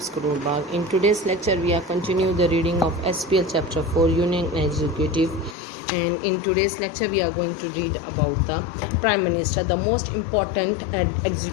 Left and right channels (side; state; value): right; drops out; at 5.6 s